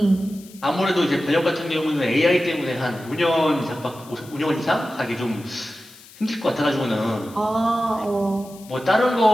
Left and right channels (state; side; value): noise; left; hiss, 22 dB below the sound